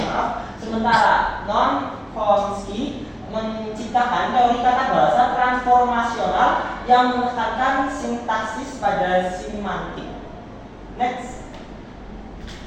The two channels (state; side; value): identical; both; correlation 1.00